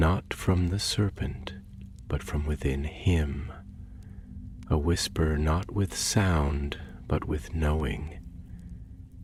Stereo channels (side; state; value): both; identical; correlation 1.00